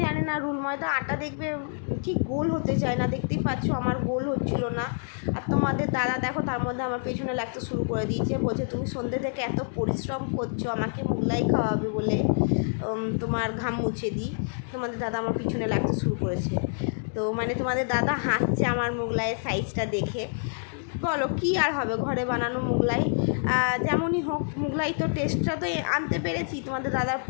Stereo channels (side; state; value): right; silent; digital silence